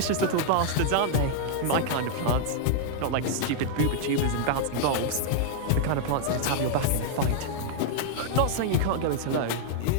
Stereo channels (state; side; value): different; both; correlation -0.01